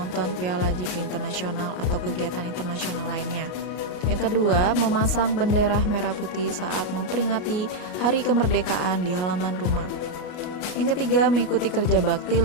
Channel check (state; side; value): late; right; 33 ms